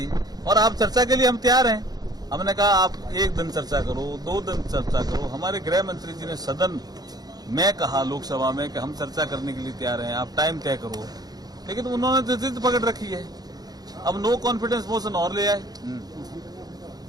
और आप चर्चा के लिए हम तैयार हैं। हमने कहा आप एक दिन चर्चा करो, 2 दिन चर्चा करो। हमारे गृह मंत्री जी ने सदन में कहा लोकसभा में कि हम चर्चा करने के लिए तैयार हैं, आप टाइम तय करो, लेकिन उन्होंने तो जिद पकड़ रखी है। अब नो कॉन्फिडेंस मोशन और ले आए,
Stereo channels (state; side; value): late; left; 0.19 ms